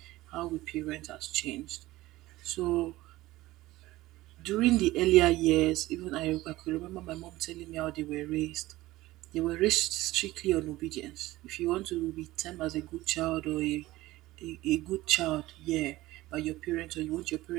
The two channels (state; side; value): quieter; left; 17.8 dB